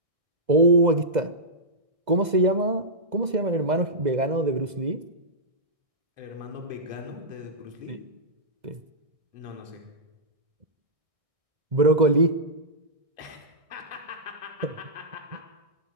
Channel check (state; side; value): late; left; 2.0 ms